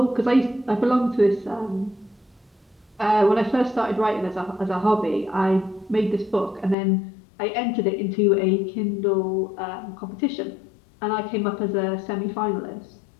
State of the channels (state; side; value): drops out; right; at 6.8 s